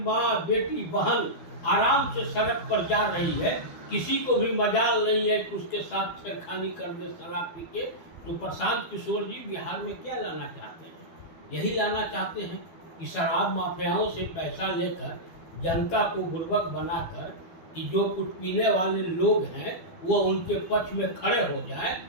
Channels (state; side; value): late; right; 12 ms